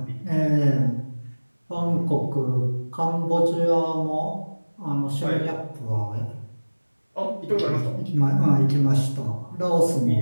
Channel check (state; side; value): inverted; both; correlation -1.00